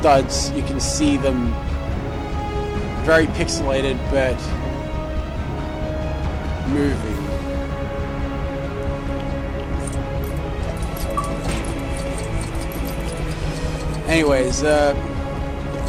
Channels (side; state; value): both; identical; correlation 1.00